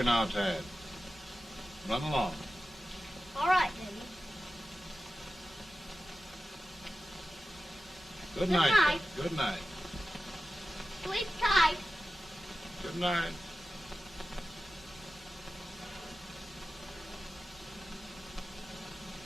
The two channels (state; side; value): normal; both; correlation 0.94